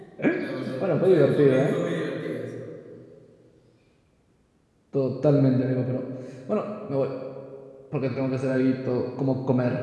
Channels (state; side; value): identical; both; correlation 1.00